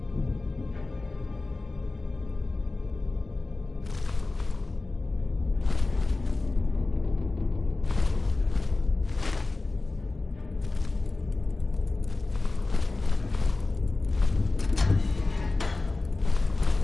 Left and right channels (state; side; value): quieter; right; 3.4 dB